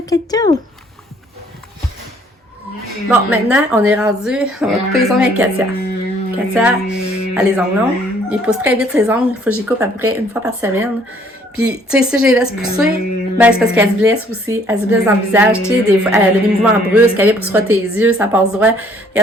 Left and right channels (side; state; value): both; normal; correlation 0.61